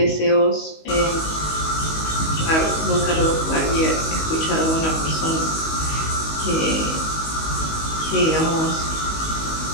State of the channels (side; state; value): right; late; 19 ms